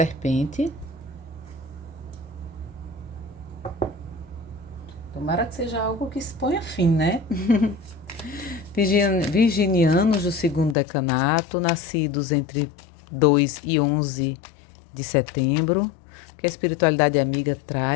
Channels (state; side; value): drops out; right; at 10.8 s